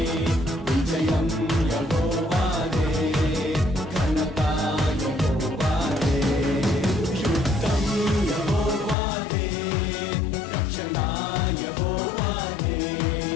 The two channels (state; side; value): drops out; right; at 9.0 s